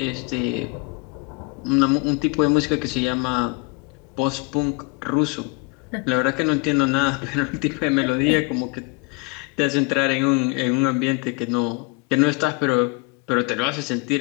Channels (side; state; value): right; quieter; 29.0 dB